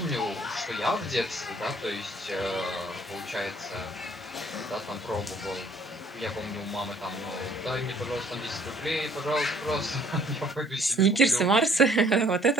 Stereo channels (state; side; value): normal; both; correlation 0.59